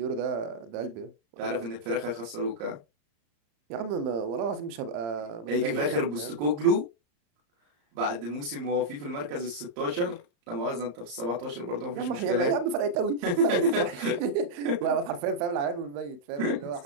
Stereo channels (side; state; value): left; late; 34 ms